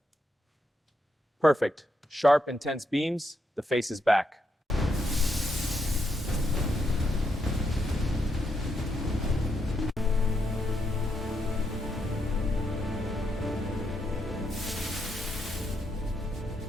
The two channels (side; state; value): both; normal; correlation 0.80